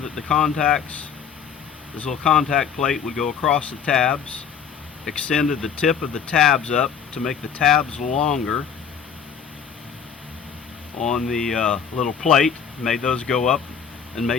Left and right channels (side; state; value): right; quieter; 7.2 dB